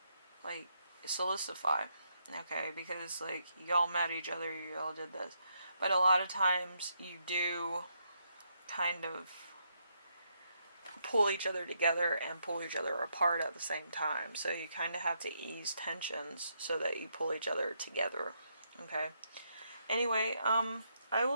like solidify, okay, because like y'all met each other, y'all did this, but a lot of times you do kind of pull each other together and pull each other apart at the same time. So you kind of have to ease tensions so that you pull each other together. Okay. Anyway, I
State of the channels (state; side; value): inverted; both; correlation -0.78